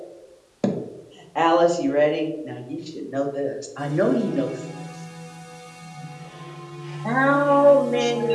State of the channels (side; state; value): both; identical; correlation 1.00